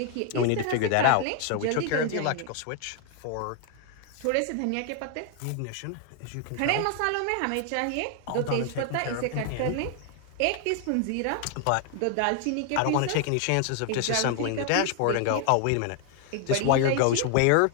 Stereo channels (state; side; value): different; both; correlation 0.00